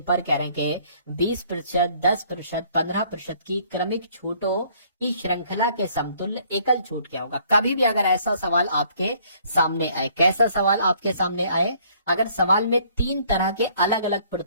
पर कह रहे हैं कि 20%, 10%, 15% की क्रमिक छूटों की श्रृंखला के समतुल्य एकल छूट क्या होगा। कभी भी अगर ऐसा सवाल आपके सामने आए, कैसा सवाल आपके सामने आए, अगर सवाल में 3 तरह के अलग अलग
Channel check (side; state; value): both; inverted; correlation -0.61